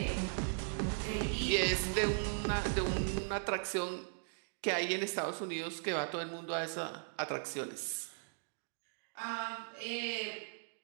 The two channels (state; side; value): silent; left; digital silence